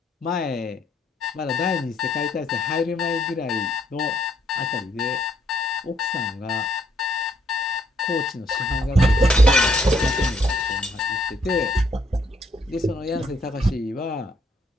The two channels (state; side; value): normal; both; correlation 0.70